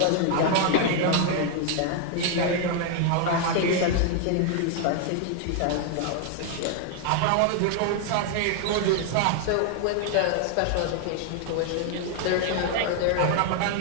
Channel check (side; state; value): both; different; correlation 0.00